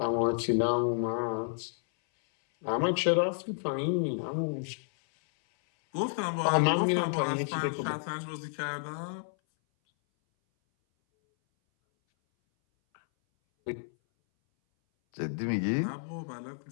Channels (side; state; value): right; silent; 58 dB below the other